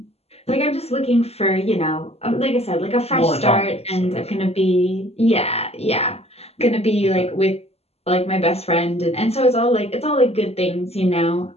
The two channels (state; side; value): late; right; 0.30 ms